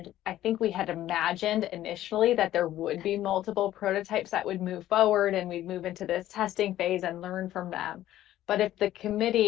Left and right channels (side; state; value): right; quieter; 13.5 dB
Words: I think we had imagined initially that there would be multiple prototypes that would move forward and we'd move into this testing phase and learn from them. But if the